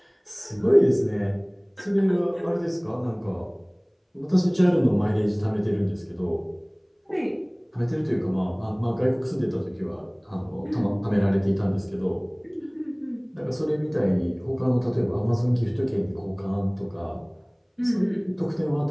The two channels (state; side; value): identical; both; correlation 1.00